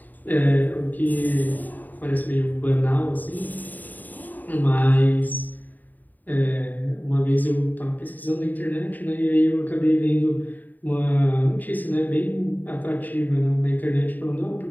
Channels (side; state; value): right; late; 0.085 ms